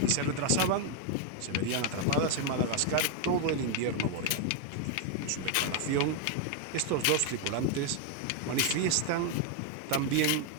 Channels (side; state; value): both; different; correlation 0.01